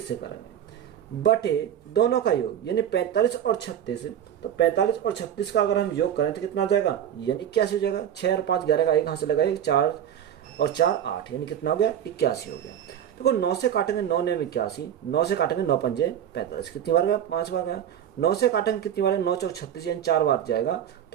से करेंगे, बटे दोनों का योग यानी 45 और 36। तो 45 और 36 का अगर हम योग करें तो कितना आ जाएगा? यानी 81 हो जाएगा। 6 और 5 11 का एक कहाँ से लगा? 4 और 4 8, यानी कितना हो गया? 81 हो गया। देखो 9 से काटेंगे 9 ने 81, 9 से काटेंगे 9 पंजे 45, कितनी बार गया? 5 बार गया। 9 से काटेंगे कितनी बार? 9 चौक 36, यानी 4 बार जाएगा,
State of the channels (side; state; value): left; quieter; 9.8 dB